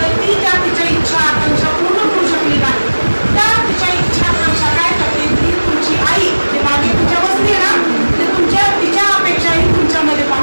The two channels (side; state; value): both; inverted; correlation -1.00